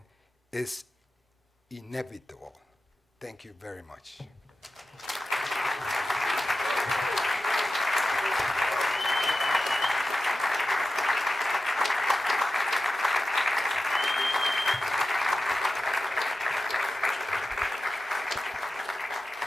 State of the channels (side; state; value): both; normal; correlation 0.94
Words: is inevitable. Thank you very much.